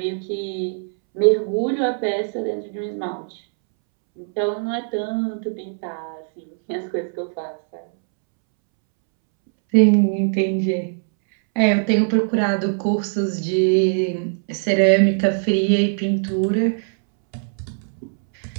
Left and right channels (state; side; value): silent; left; 65 dB below the other